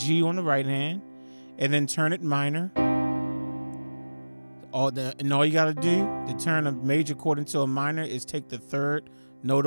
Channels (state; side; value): inverted; both; correlation -1.00